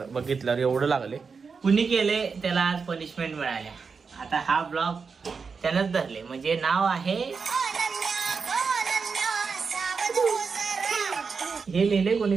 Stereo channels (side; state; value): left; quieter; 5.2 dB